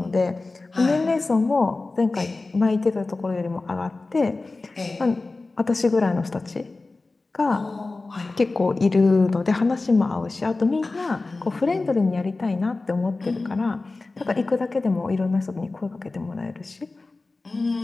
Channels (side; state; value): right; quieter; 3.4 dB